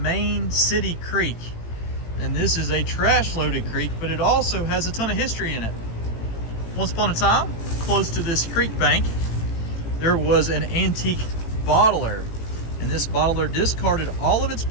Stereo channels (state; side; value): late; right; 18 ms